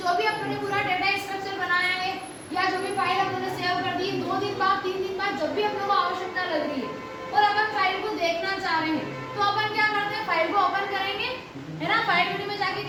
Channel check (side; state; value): both; identical; correlation 1.00